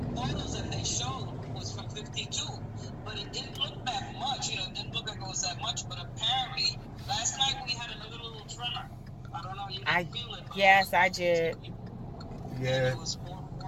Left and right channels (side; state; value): both; identical; correlation 1.00